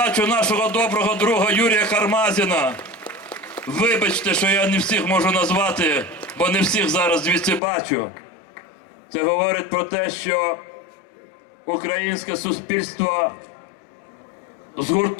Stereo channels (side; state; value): right; drops out; at 7.6 s